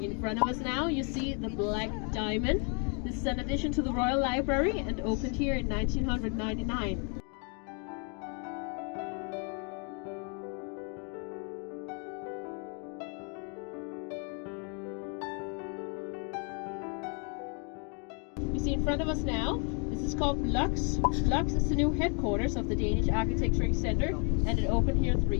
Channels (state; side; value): quieter; right; 37.4 dB